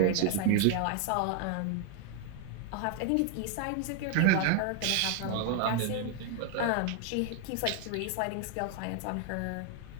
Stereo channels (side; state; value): both; different; correlation 0.00